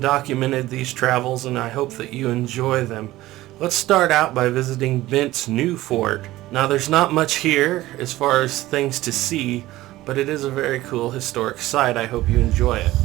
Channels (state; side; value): quieter; left; 16.7 dB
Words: these travels, and I hope that you enjoy them. Let's start out by visiting Bent's New Fort. Now, there's not much here as far as things to see, but it is a very cool historic site. I hope you enjoy it.